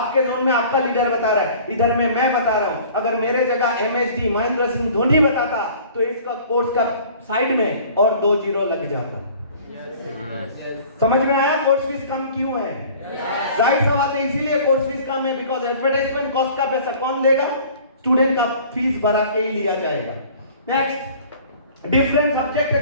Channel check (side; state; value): both; inverted; correlation -0.48